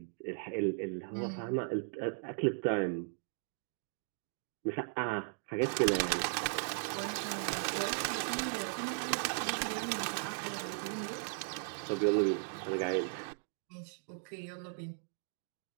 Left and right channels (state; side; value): silent; left; digital silence